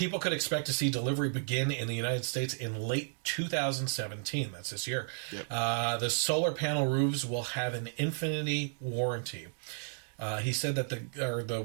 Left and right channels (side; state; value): left; silent; digital silence